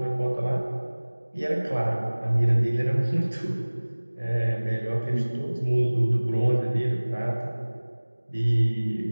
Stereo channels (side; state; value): both; inverted; correlation -1.00